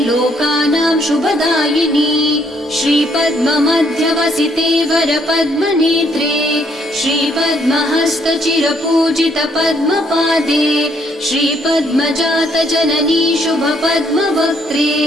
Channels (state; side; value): normal; both; correlation 0.69